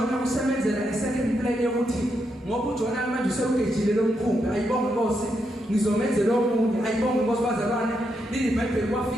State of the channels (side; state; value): both; normal; correlation 0.81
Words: usemenzela second plan yokuthi ngoba uJona manje usewugejile lo mkhumbi. Ayibonge Nkosi. Ngizomenzela omunye. Ayibonge Nkosi bazalwane. IBhayibheli